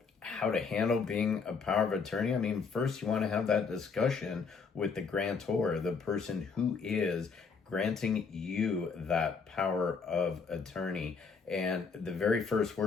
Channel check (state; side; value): quieter; right; 5.2 dB